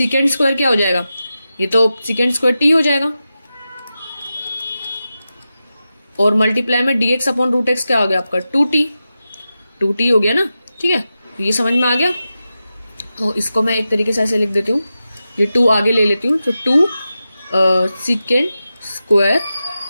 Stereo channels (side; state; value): both; inverted; correlation -0.91